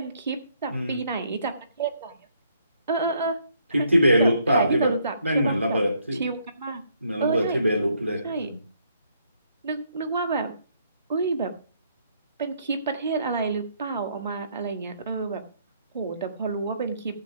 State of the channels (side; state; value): both; inverted; correlation -0.70